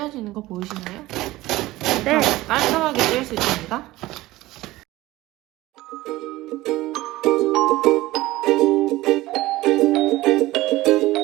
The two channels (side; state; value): left; quieter; 17.9 dB